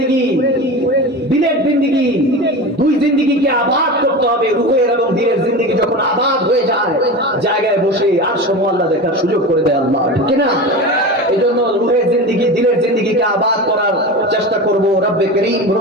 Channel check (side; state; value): both; normal; correlation 0.28